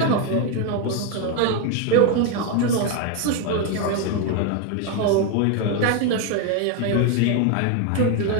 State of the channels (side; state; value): both; different; correlation 0.01